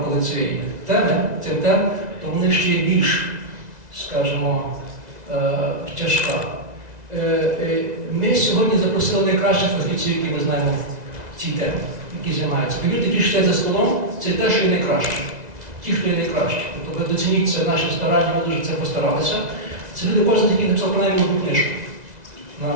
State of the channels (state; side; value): late; left; 2.0 ms